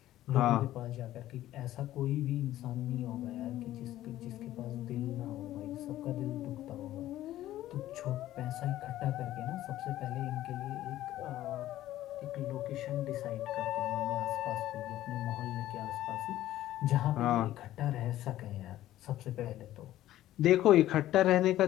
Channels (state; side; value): quieter; right; 14.0 dB